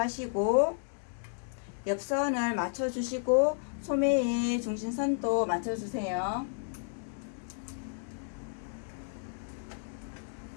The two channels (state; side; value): silent; right; digital silence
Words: 옆선을 맞춰 주시고 소매의 중심선도 맞춰 주세요.